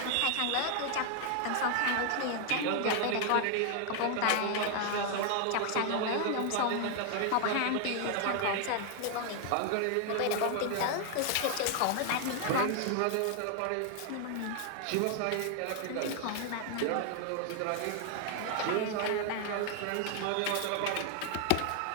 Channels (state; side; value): different; both; correlation 0.00